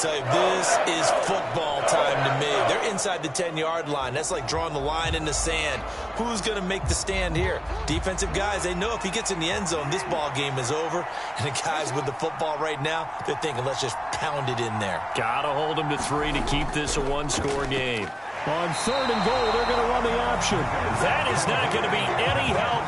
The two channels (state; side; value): identical; both; correlation 1.00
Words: tell you, this is football time to me. They're inside the 10-yard line. That's like drawing the line in the sand. Who's going to make the stand here? Defensive guys, they know if he gets in the end zone, this ball game is over. And the guys with the football right now, they're thinking, let's just pound it in there. Got to hold him to 3 to keep this a one-score game. On third and goal, they're going to run the option. That is not going to be any